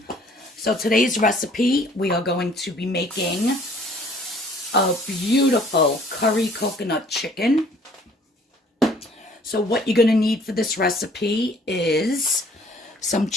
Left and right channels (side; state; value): both; normal; correlation 0.56